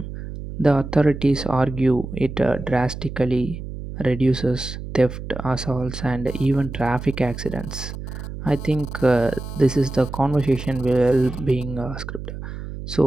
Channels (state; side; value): noise; right; hum, 9 dB below the sound